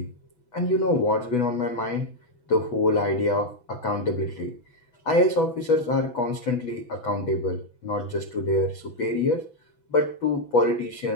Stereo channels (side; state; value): right; late; 6.1 ms